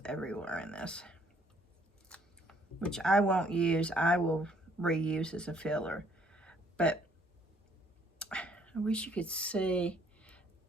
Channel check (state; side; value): normal; both; correlation 0.64